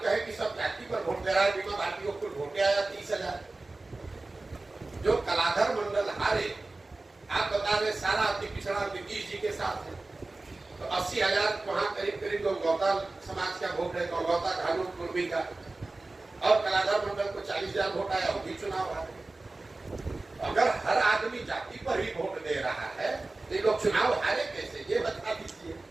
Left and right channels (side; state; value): left; quieter; 3.2 dB